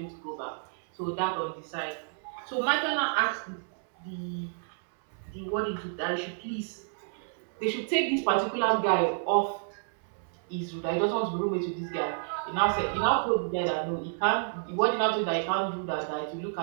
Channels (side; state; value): left; silent; digital silence